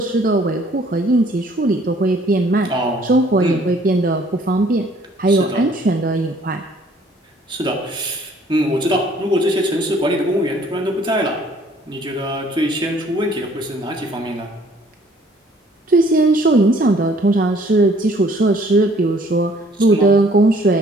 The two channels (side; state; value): both; normal; correlation 0.59